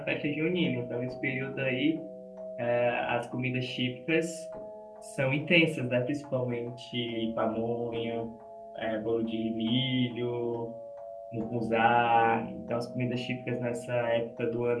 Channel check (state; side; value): identical; both; correlation 1.00